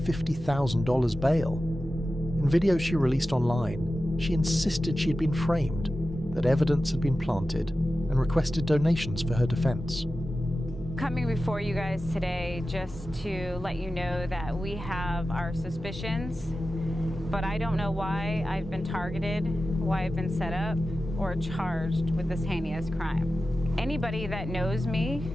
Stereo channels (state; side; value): normal; both; correlation 0.94